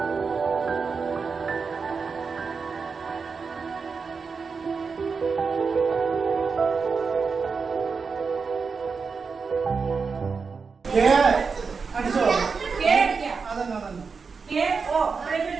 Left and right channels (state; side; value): quieter; left; 5.1 dB